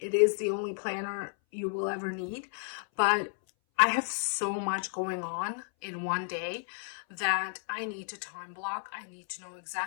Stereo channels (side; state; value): right; silent; 56 dB below the other